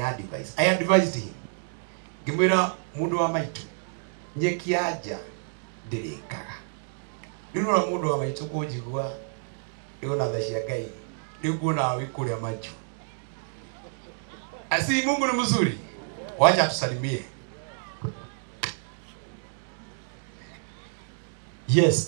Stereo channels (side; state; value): left; silent; digital silence